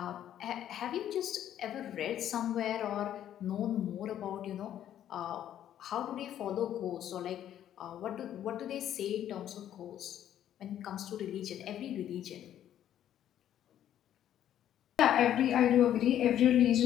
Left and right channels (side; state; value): right; quieter; 11.0 dB